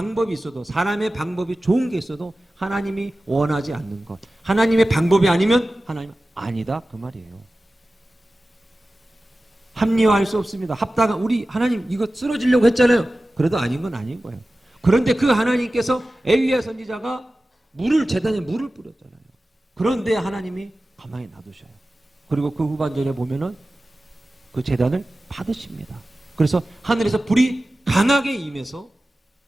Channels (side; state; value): both; normal; correlation 0.96